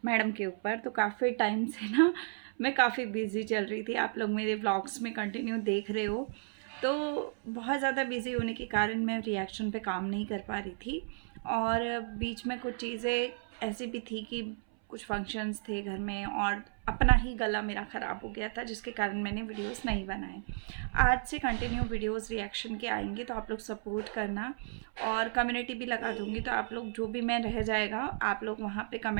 मैडम के ऊपर। तो काफ़ी टाइम से ना मैं काफ़ी बिजी चल रही थी। आप लोग मेरे व्लॉग्स में कंटिन्यू देख रहे हो। तो बहुत ज़्यादा बिजी होने के कारण मैं रिएक्शन पे काम नहीं कर पा रही थी। और बीच में कुछ चीज़ें ऐसी भी थी कि कुछ फंक्शंस थे घर में और अपना ही गला मेरा ख़राब हो गया था, जिसके कारण मैंने वीडियोस नहीं बनाए। आज से कंटिन्यू वीडियोस रिएक्शन के आएंगे, तो आप लोग सपोर्ट करना। और कम्युनिटी भी लगा दूंगी, तो आप लोग जो भी मैं रह जाएगा आप लोग वहाँ पे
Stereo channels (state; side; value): silent; left; 55 dB below the other